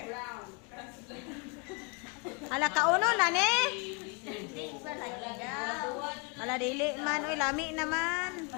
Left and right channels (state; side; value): quieter; right; 32.7 dB